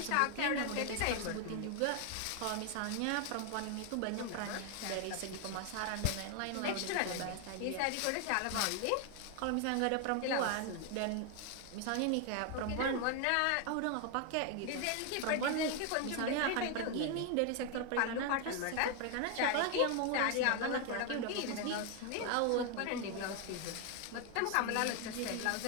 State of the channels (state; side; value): different; both; correlation 0.01